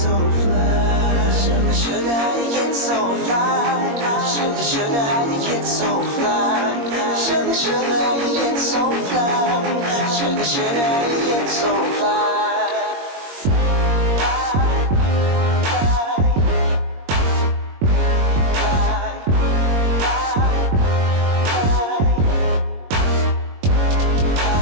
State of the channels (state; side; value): late; left; 21 ms